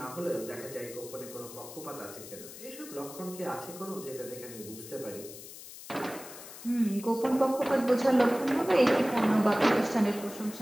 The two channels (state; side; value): noise; left; hiss, 14 dB below the sound